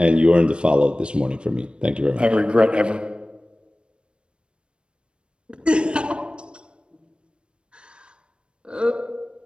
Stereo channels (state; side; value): late; left; 0.056 ms